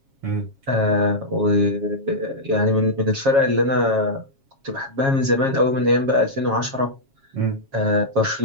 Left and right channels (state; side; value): late; left; 7.4 ms